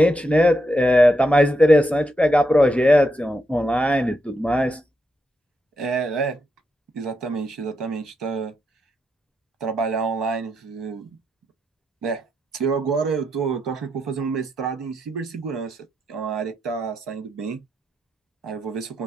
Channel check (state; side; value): normal; both; correlation 0.82